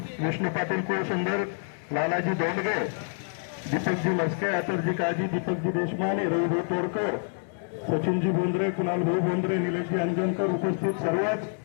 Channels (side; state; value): right; silent; 60 dB below the other